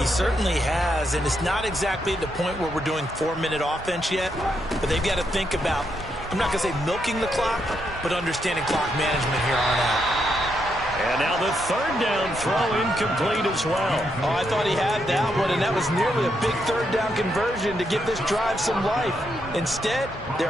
certainly has, and it's not exactly at the point where we're doing 4-minute offense yet, but they've got to think about, I'm not going to say milking the clock, but understanding clock management here on out. And now the 3rd down throw incomplete as well. Oh, I thought he had that one, and that was nearly a big 3rd down conversion to give this drive some life. Instead,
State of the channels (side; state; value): both; normal; correlation 0.79